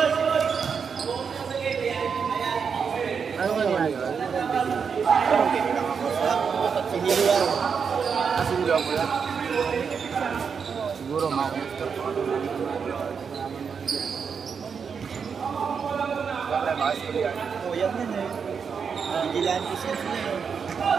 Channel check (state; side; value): quieter; left; 6.3 dB